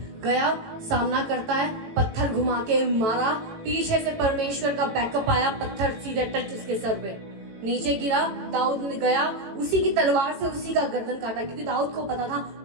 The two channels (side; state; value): left; late; 18 ms